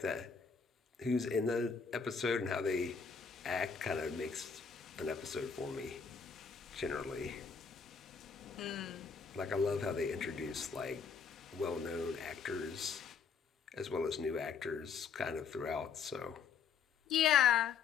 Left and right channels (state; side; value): quieter; right; 6.0 dB